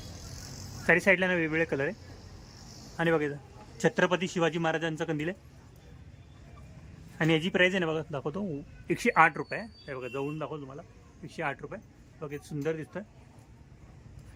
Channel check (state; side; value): identical; both; correlation 1.00